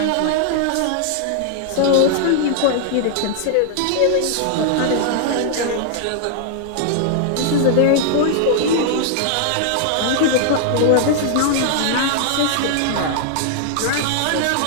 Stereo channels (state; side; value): different; both; correlation 0.00